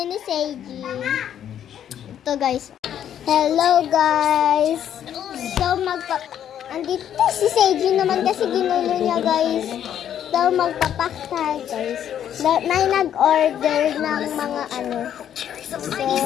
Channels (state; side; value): quieter; right; 10.0 dB